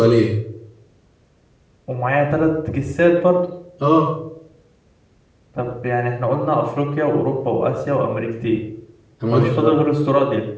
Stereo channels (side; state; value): both; identical; correlation 1.00